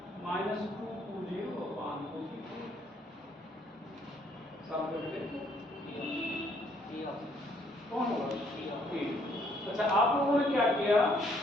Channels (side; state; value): both; normal; correlation 0.66